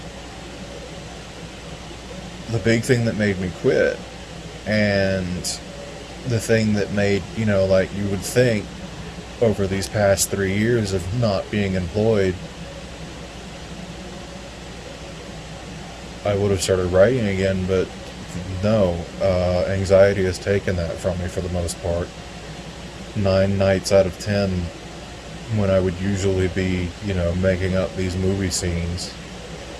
the big thing that made me quit, and the thing that made, like, you would think over these past 3 years of not being employed, I would have started writing again, but no, anxiety has taken that from me for the most part. 9 nights out of 10, when I would usually be, making up these movie scenes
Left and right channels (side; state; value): both; identical; correlation 1.00